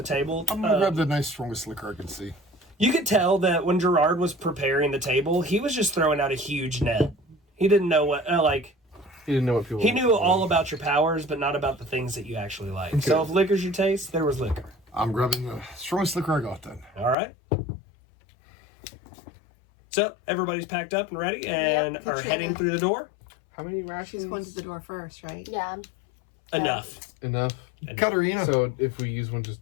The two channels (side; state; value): right; drops out; at 17.2 s